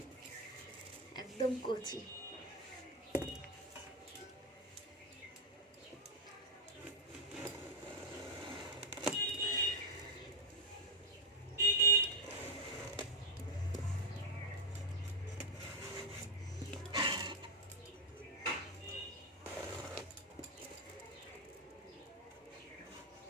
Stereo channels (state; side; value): normal; both; correlation 0.03